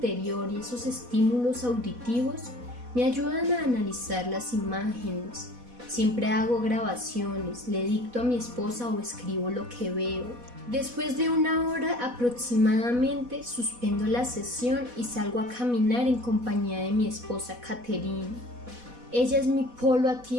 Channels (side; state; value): left; late; 4.1 ms